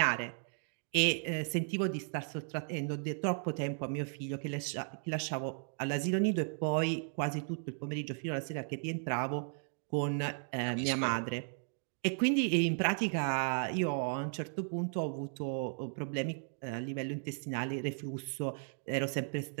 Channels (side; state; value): left; silent; 54 dB below the other